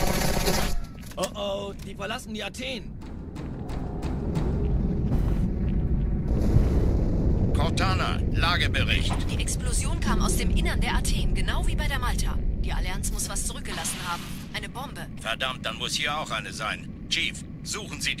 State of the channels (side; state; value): both; identical; correlation 1.00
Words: Oh oh, die verlassen die Athen. Cortana, Lagebericht. Die Explosion kam aus dem Innern der Athen, genau wie bei der Malta. Die Allianz muss was zurückgelassen haben. Eine Bombe. Verdammt, dann muss hier auch eine sein. Chief, suchen Sie